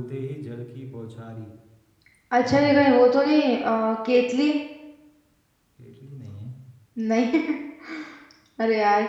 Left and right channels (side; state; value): both; identical; correlation 1.00